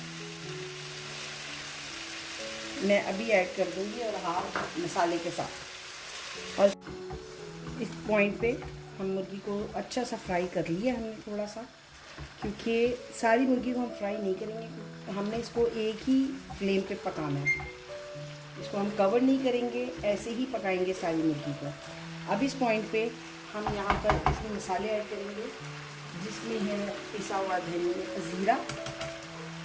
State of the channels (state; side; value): identical; both; correlation 1.00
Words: मैं अभी ऐड कर दूंगी और 1/2 मसाले के साथ। और इस पॉइंट पे हम मुर्गी को अच्छा सा फ्राई कर लिया हमने थोड़ा सा, क्योंकि सारी मुर्गी को हम फ्राई नहीं करेंगे, हमने इसको एक ही फ्लेम पे पकाना है। इसको हम कवर नहीं करेंगे, ऐसे ही पकाएंगे सारी मुर्गी को। अब इस पॉइंट पे हम यहाँ पर इसमें मसाले ऐड करेंगे जिसमें है पिसा हुआ धनिया, जीरा,